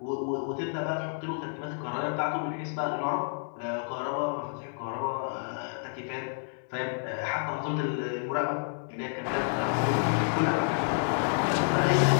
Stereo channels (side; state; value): right; silent; digital silence